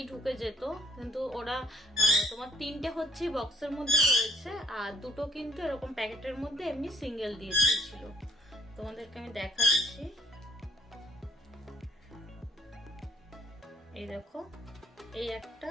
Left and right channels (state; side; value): normal; both; correlation 0.64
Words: ঢুকে যেত, কিন্তু ওরা তোমার 3টে হচ্ছে বক্সের মধ্যে রয়েছে, আর 2টো কিন্তু এরকম প্যাকেটের মধ্যে এমনি সিঙ্গেল দিয়ে দিয়েছিল। তোমাদেরকে আমি দেখাচ্ছি, এই দেখো, এই একটা,